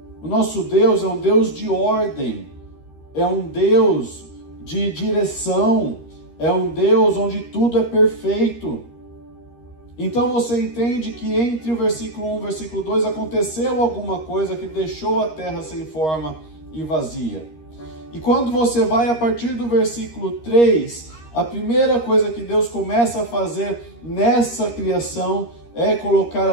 O nosso Deus é um Deus de ordem, é um Deus de direção, é um Deus onde tudo é perfeito. Então você entende que entre o versículo 1 e o versículo 2 aconteceu alguma coisa que deixou a terra sem forma e vazia. E quando você vai a partir do versículo 3, a primeira coisa que Deus começa a fazer nessa criação é colocar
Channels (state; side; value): late; right; 13 ms